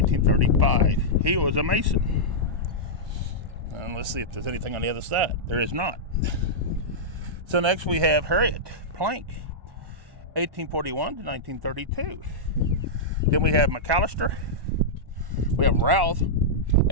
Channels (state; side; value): late; left; 1.1 ms